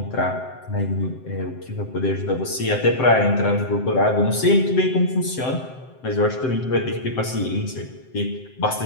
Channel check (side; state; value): right; late; 7.8 ms